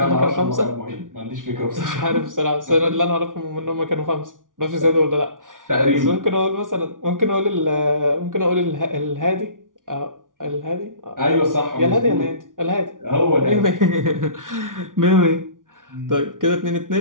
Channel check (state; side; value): late; left; 0.88 ms